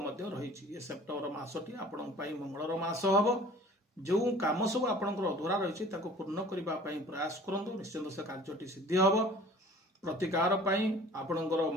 ମଧ୍ୟ ରହିଛି। ଏ ସେପ୍ଟେମ୍ବର ମାସଟି ଆପଣଙ୍କ ପାଇଁ ମଙ୍ଗଳର ମାସ ହେବ। ଯେଉଁ କାମ ସବୁ ଆପଣଙ୍କର ଅଧୁରା ରହିଛି ତାକୁ ପୂର୍ଣ୍ଣ କରିବା ପାଇଁ ପ୍ରୟାସ କରନ୍ତୁ। ନିଶ୍ଚିନ୍ତ ସେ କାର୍ଯ୍ୟଟି ସିଦ୍ଧି ହେବ। ପ୍ରତିକାର ପାଇଁ ଆପଣଙ୍କର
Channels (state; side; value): normal; both; correlation 0.47